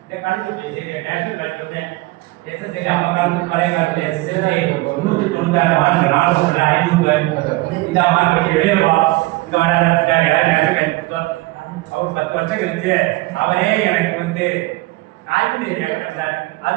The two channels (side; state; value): left; quieter; 20.6 dB